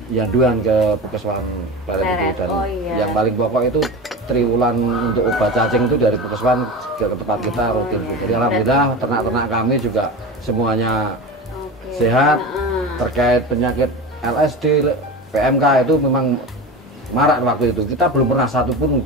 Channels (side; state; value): both; normal; correlation 0.28